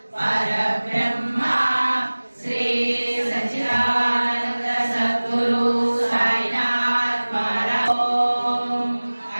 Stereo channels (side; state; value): both; inverted; correlation -1.00